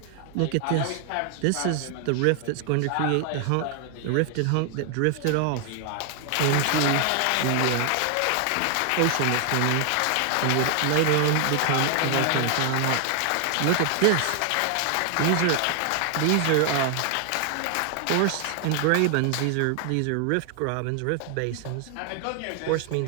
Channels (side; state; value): both; different; correlation 0.00